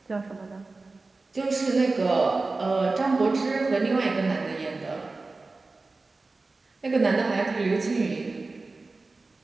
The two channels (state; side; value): quieter; left; 3.6 dB